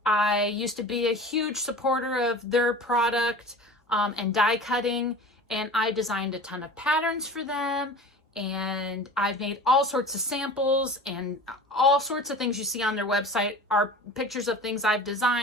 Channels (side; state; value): both; normal; correlation 0.37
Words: I used to be a huge supporter of their product and die cutting, and I designed a ton of patterns for them, and I've made all sorts of samples, and all sorts of things you see on their website are pictures of things I've